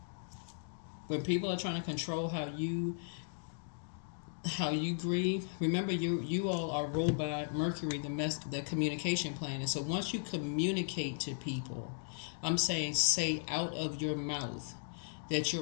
when people are trying to control how you grieve, remember you all are ruled by Mercury, the communication planet. So once you communicate to people, I'm saying say out of your mouth that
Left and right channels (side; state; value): right; silent; digital silence